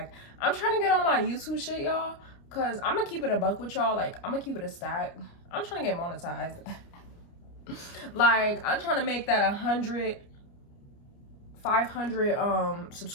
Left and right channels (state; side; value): late; right; 29 ms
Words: I'm trying to get on my YouTube shit, y'all, cause I'm gonna keep it a buck with y'all. Like, I'm gonna keep it a stack. I'm trying to get monetized. Like, I'm trying to make that 500